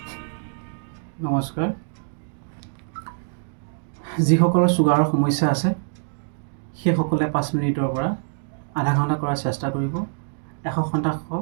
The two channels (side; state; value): left; silent; digital silence